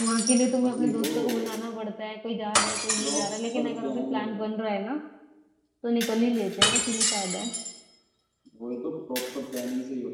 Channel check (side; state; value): both; identical; correlation 1.00